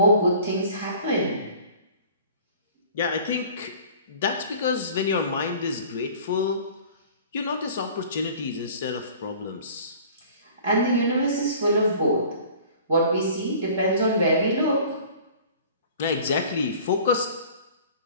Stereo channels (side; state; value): both; inverted; correlation -0.47